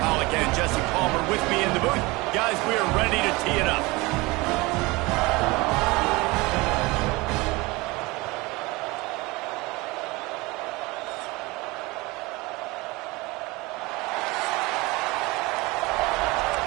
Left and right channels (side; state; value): left; quieter; 23.2 dB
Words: and Jesse Palmer with me in the booth. Guys, we are ready to tee it up.